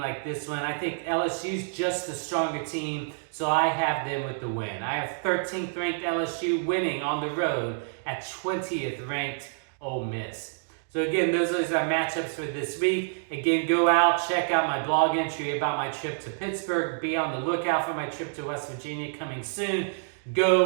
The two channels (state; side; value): silent; left; digital silence